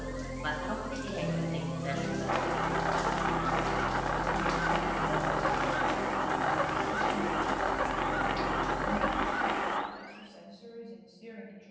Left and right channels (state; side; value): identical; both; correlation 1.00